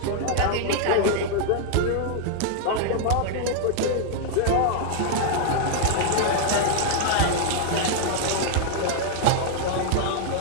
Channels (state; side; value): different; both; correlation 0.00